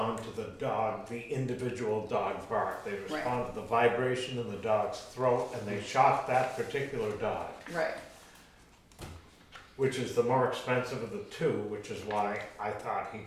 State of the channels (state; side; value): identical; both; correlation 1.00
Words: to the individual dog bark. They respond to the vibration in the dog's throat, and they shock that particular dog, Right. which is the more expensive of the two, which is why I thought he